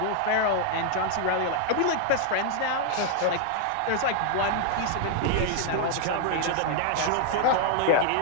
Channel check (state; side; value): different; both; correlation 0.00